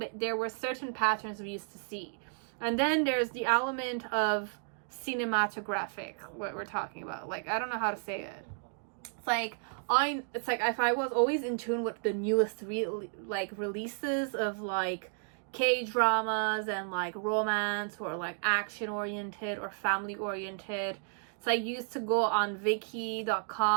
there were certain patterns we used to see. And then there's the element of cinematographic, what we're talking about. Like, I don't know how to say it. It's like if I was always in tune with the newest releases of like K-dramas and like romance or like action oriented or family oriented. So I used to go on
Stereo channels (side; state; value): left; silent; 56 dB below the other